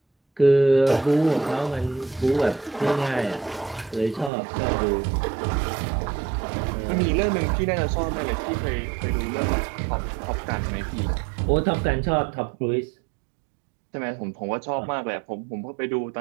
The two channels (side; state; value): left; drops out; at 4.3 s